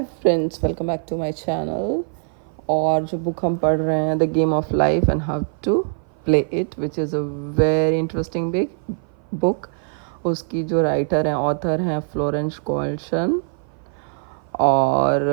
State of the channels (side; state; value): left; silent; 57 dB below the other